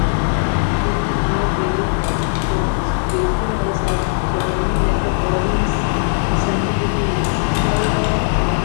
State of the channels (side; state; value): right; silent; digital silence